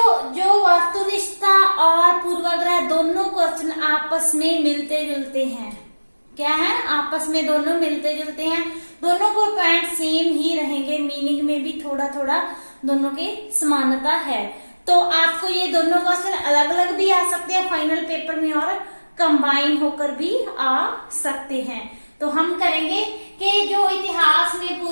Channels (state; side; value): inverted; both; correlation -1.00